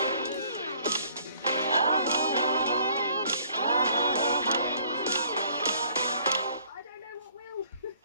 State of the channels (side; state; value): both; inverted; correlation -0.60